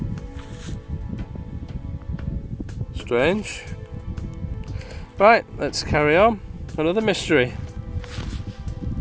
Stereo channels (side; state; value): both; identical; correlation 1.00